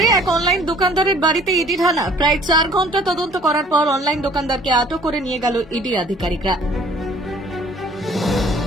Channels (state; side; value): normal; both; correlation 0.55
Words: এক অনলাইন দোকানদারের বাড়িতে ইডি হানা। প্রায় 4 ঘন্টা তদন্ত করার পর অনলাইন দোকানদারকে আটক করে নিয়ে গেল ইডি আধিকারিকরা।